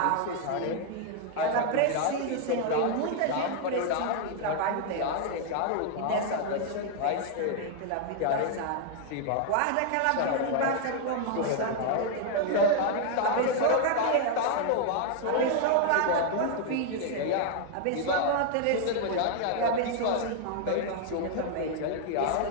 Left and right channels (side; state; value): both; different; correlation 0.00